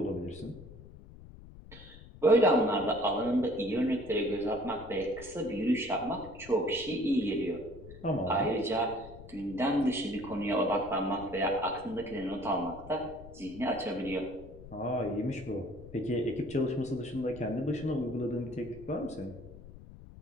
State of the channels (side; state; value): left; noise; rumble, 17 dB below the sound